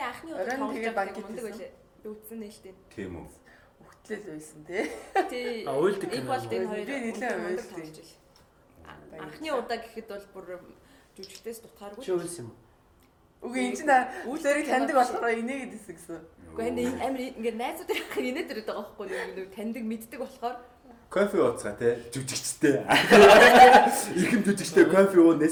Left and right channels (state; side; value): identical; both; correlation 1.00